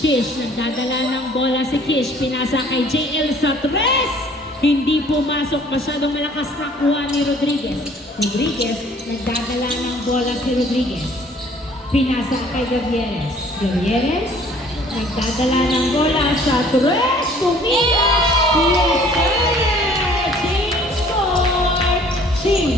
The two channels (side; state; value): both; normal; correlation 0.55